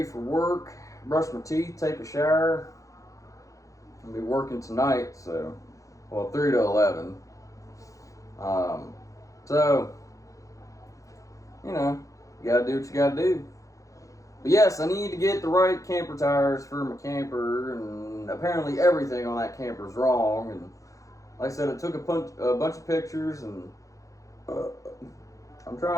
for work. Brush my teeth. Take a shower. I'll be working tonight, so, 3 to 11. So, you gotta do what you gotta do. But yes, I need to get the right camper tires for my camper, and apparently everything on that camper is wrong. And like I said, I took a bunch of pictures, and I'm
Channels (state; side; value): late; right; 0.16 ms